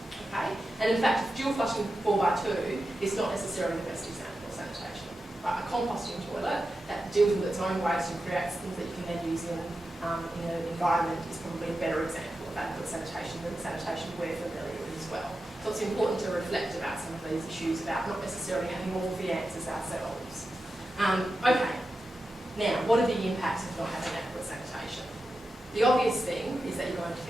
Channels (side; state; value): both; normal; correlation 0.91